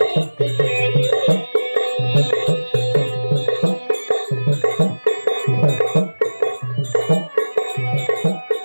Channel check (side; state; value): both; inverted; correlation -1.00